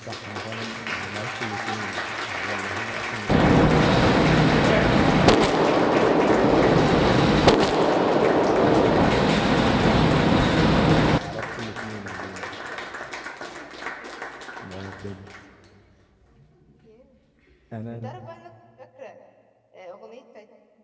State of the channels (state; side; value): identical; both; correlation 1.00